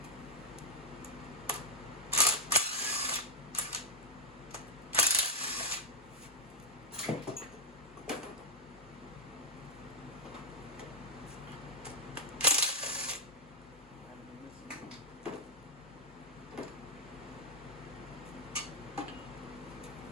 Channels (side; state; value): both; normal; correlation -0.02